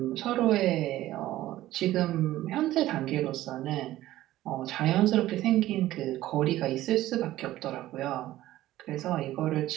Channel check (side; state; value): left; quieter; 15.1 dB